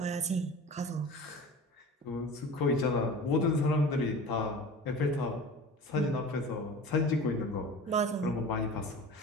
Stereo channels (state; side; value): normal; both; correlation 0.37